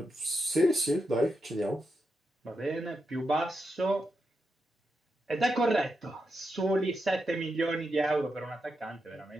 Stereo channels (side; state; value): both; normal; correlation 0.86